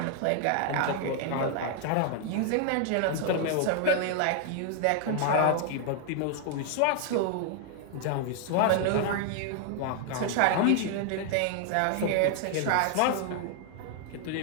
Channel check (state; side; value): different; both; correlation 0.00